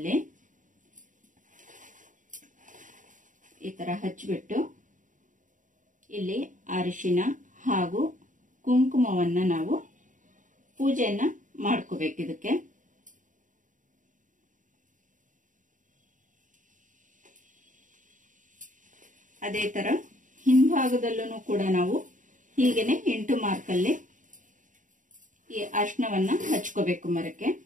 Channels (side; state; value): left; late; 0.37 ms